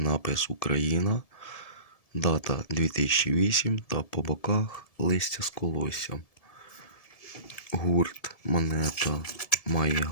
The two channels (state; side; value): late; right; 1.7 ms